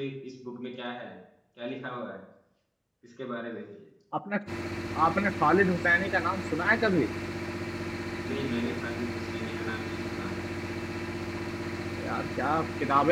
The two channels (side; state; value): both; identical; correlation 1.00